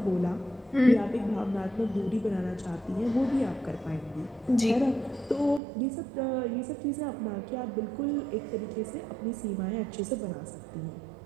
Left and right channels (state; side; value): drops out; left; at 5.6 s